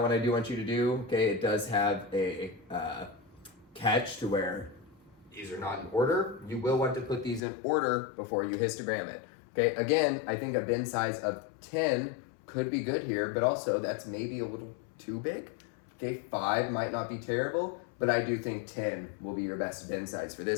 I do want you to do, okay, it does have a catch to where these are not in order. You will want to put these in order before you histogram it. Okay, again, I think a bin size of 10 could be good here, but also that's maybe a little too big. Okay, 5 might not be terrible, but I do think 10 will be your best bin size for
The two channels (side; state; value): right; drops out; at 7.4 s